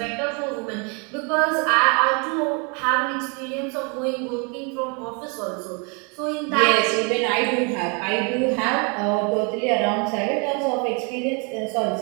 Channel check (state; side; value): quieter; left; 34.2 dB